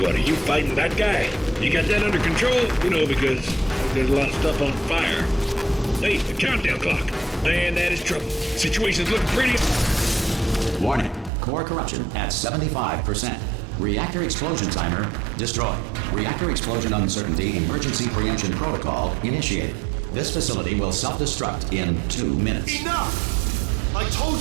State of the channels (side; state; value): left; drops out; at 11.3 s